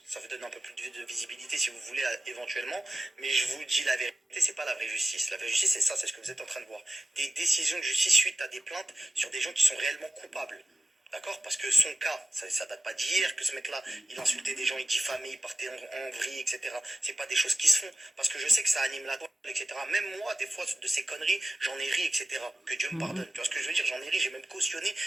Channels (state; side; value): normal; both; correlation 0.96